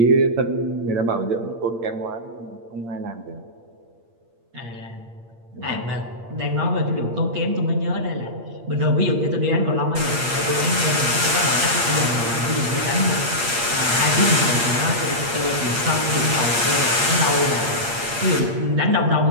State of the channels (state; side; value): late; left; 8.6 ms